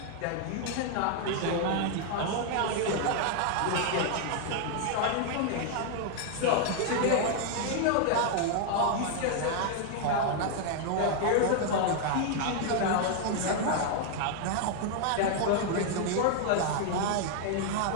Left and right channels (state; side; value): different; both; correlation 0.00